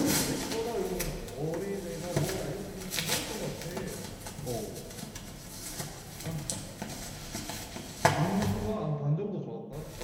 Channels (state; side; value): identical; both; correlation 1.00